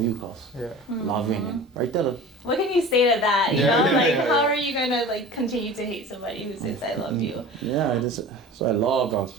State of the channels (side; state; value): both; normal; correlation 0.38